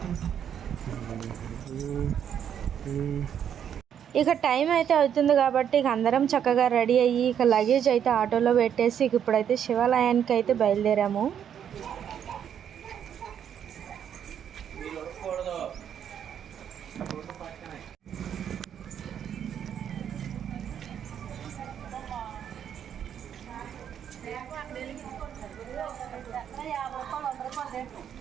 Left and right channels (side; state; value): left; quieter; 8.9 dB